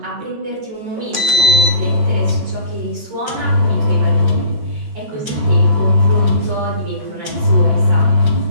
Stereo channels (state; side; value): late; left; 13 ms